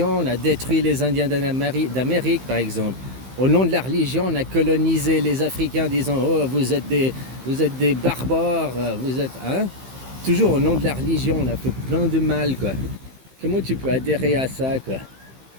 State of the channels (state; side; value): late; left; 15 ms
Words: on a détruit les Indiens d'Amérique, par exemple. Au nom de la religion, on a colonisé les Africains en disant « Oh, vous êtes des barbares, vous êtes... » hein? Toujours au nom de la religion, on a fait plein de mal, quoi. Comment tu peux adhérer à ça, quoi?